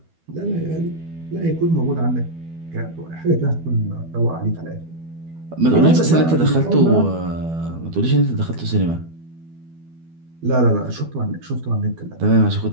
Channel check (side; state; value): left; late; 12 ms